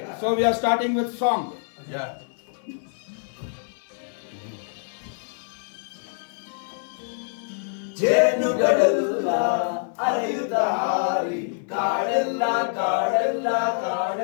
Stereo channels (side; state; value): right; silent; 58 dB below the other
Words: So we are starting with song. Yeah. ಜೇನುಗಳೆಲ್ಲ ಅರೆಯುತ್ತ ಹಾರಿ ಕಾಡೆಲ್ಲ ಕಾಡೆಲ್ಲ